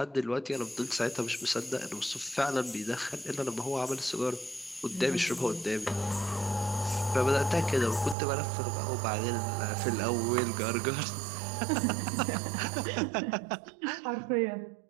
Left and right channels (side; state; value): left; drops out; at 8.2 s